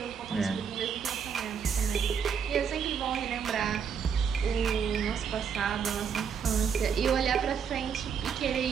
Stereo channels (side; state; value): left; quieter; 6.9 dB